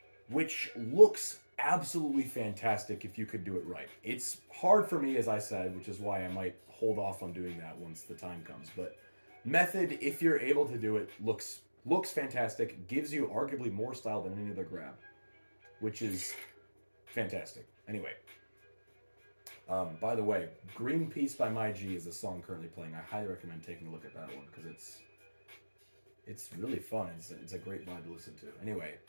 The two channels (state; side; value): inverted; both; correlation -1.00